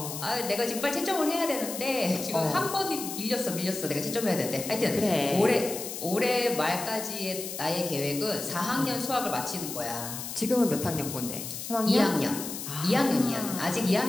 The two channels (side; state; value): left; noise; hiss, 7 dB below the sound